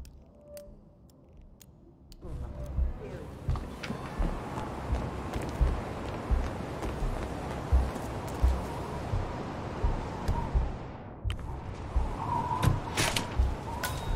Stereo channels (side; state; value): both; identical; correlation 1.00